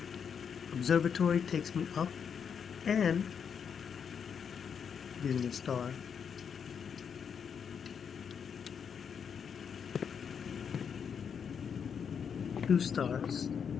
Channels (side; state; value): right; quieter; 7.1 dB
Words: Observatory takes me up and using a star. Two stars.